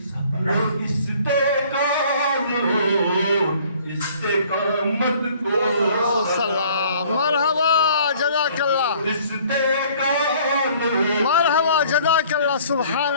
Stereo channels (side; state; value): both; inverted; correlation -0.55